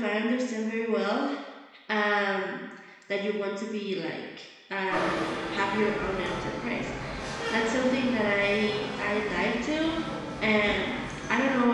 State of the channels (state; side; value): identical; both; correlation 1.00